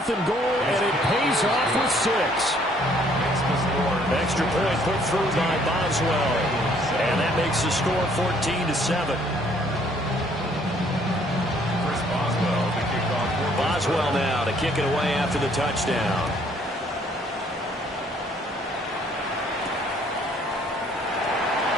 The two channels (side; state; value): both; normal; correlation 0.63